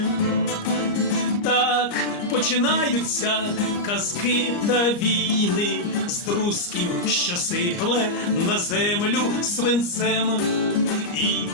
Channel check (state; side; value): late; right; 34 ms